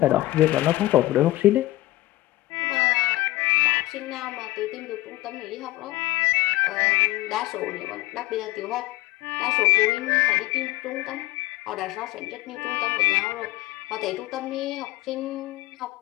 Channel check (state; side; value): quieter; right; 17.2 dB